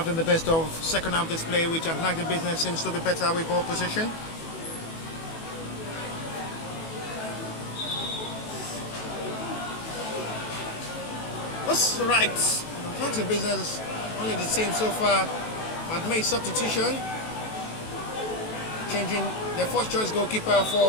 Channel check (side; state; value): right; late; 18 ms